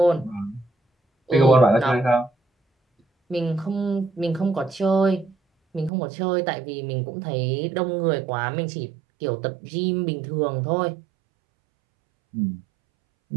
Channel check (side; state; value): left; drops out; at 5.9 s